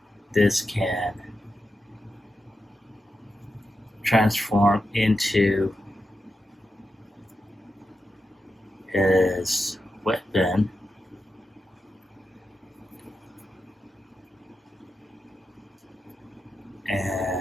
this can transform into his weapon.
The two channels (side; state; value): both; normal; correlation 0.88